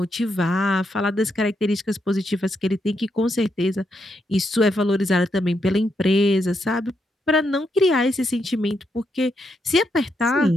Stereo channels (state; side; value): normal; both; correlation 0.80